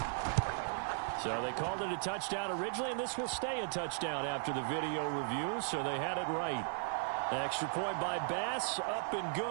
So they called it a touchdown originally, and this will stay a touchdown after the video review, so they had it right. Extra point by Bass, up and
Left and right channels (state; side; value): silent; left; 53 dB below the other